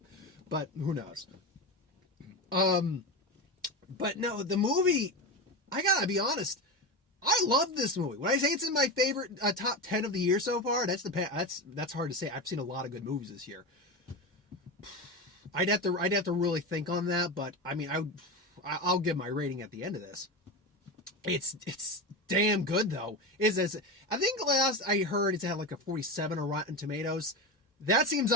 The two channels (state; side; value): normal; both; correlation 0.21